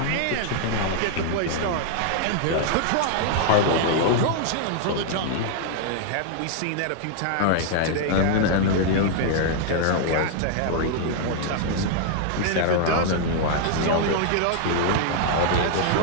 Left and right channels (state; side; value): different; both; correlation -0.01